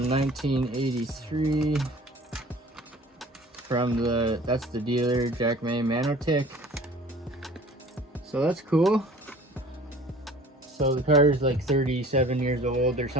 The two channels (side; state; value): both; normal; correlation 0.47